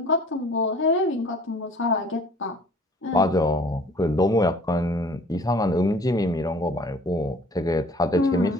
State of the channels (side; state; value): both; normal; correlation 0.51